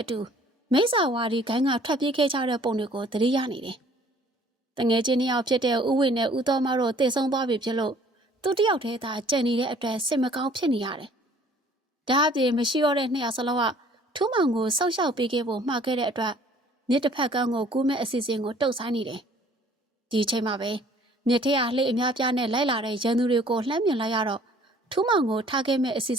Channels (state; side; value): normal; both; correlation 0.56